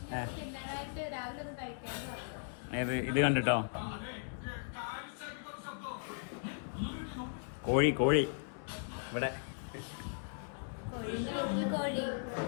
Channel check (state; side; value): silent; right; digital silence